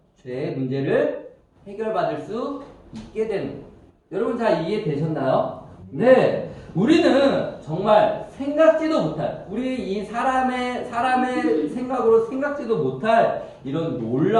죄의 문제를 해결받을 수 있게 되는 거예요. 여러분 잘 이해되셨나요? 네. 우리는 정말 생각지도 못할 우리 이 사람의 생각으로 생각지도 못할 이런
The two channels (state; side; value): identical; both; correlation 1.00